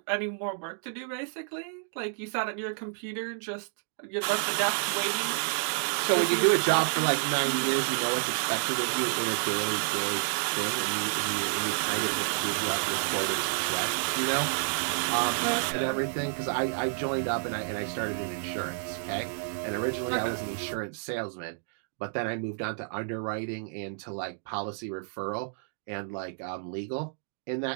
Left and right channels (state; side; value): silent; left; digital silence